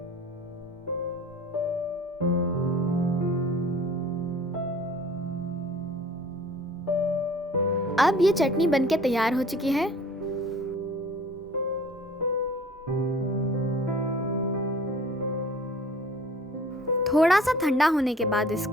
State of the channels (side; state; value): both; normal; correlation 0.48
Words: अब ये चटनी बनके तैयार हो चुकी है। थोड़ा सा ठंडा होने के बाद